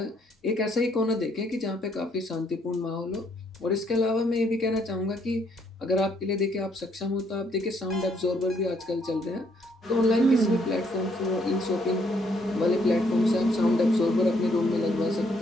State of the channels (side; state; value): both; normal; correlation 0.70